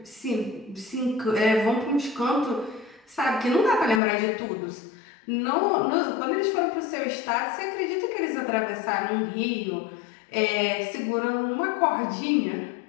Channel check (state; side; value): drops out; right; at 4.0 s